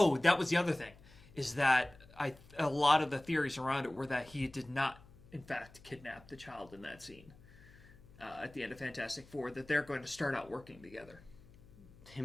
was the other thing, is that a lot of the theories around it were that he did not, in fact, kidnap the child in that scene at the end of Fantastic Four. That they're going to start out working together.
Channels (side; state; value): left; noise; hum, 23 dB below the sound